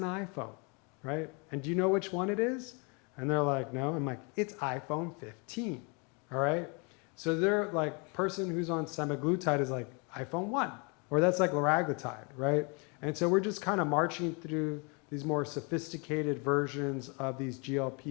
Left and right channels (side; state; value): right; quieter; 32.7 dB